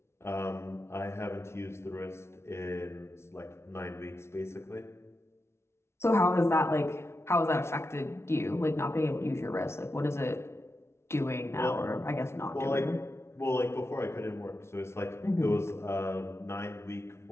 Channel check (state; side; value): late; right; 0.13 ms